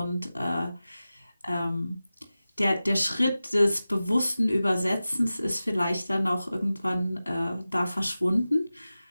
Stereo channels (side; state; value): both; inverted; correlation -0.95